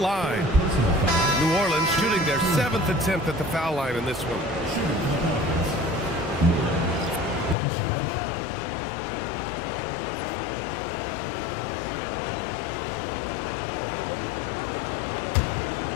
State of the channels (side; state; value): right; drops out; at 7.6 s